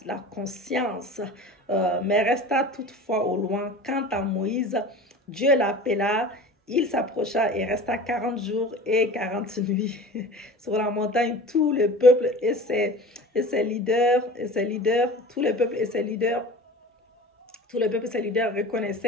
conscience, mais resta toutefois au loin. Quant à Moïse, Dieu l'appela, il s'approcha et resta 40 jours et 40 nuits sur la montagne. Tout le peuple et ses leaders, tout le peuple et ses leaders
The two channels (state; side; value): normal; both; correlation 0.38